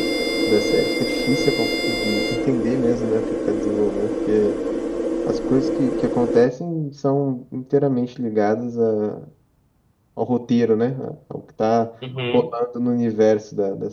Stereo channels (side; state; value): both; identical; correlation 1.00